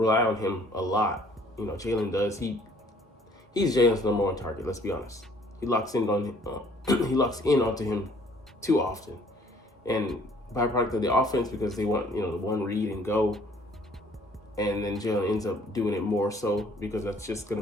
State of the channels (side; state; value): both; normal; correlation 0.58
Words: on him a lot. Jalen does. He's Jalen's number 1 target. Let's be honest. He locks in onto him too often, and byproduct of the offense because they want the one read and go. And then Jalen ends up doing it more so because that's just going